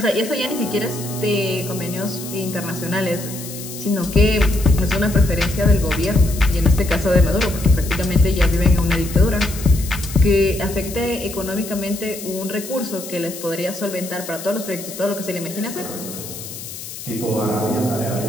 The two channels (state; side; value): noise; left; hiss, 11 dB below the sound